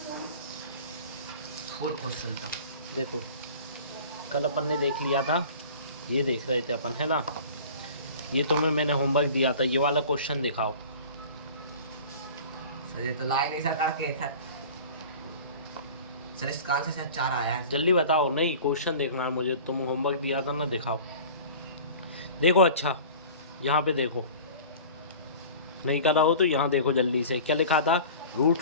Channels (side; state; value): both; inverted; correlation -0.41